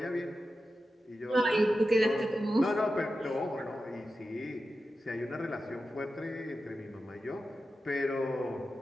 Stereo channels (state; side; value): normal; both; correlation 0.92